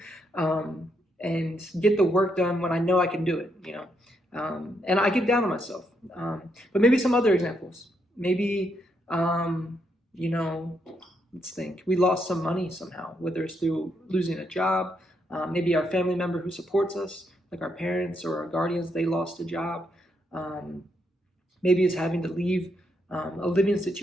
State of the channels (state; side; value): normal; both; correlation 0.78